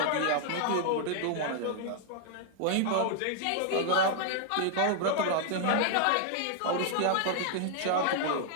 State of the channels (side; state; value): both; different; correlation 0.00